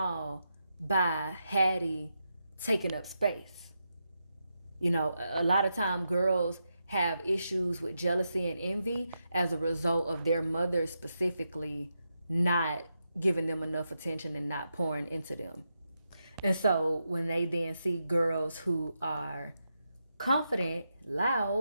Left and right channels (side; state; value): both; inverted; correlation -0.85